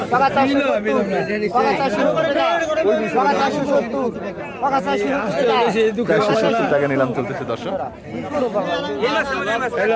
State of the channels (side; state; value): both; identical; correlation 1.00